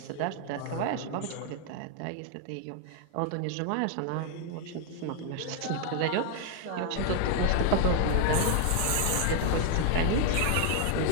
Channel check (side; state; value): both; different; correlation 0.00